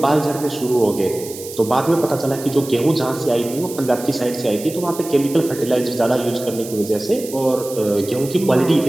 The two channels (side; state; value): right; noise; hiss, 13 dB below the sound